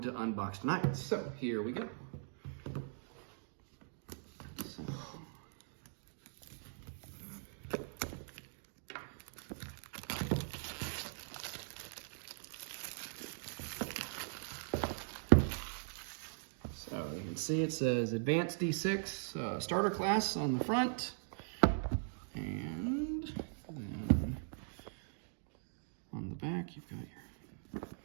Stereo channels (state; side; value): silent; left; digital silence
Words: to unbox tonight. So here we go. So you can see it says Advanced D6 starter class on the front, and then on the back you've got your